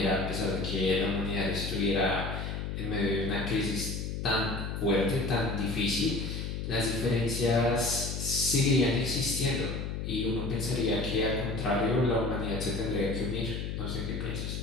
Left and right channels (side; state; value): left; noise; hum, 4 dB below the sound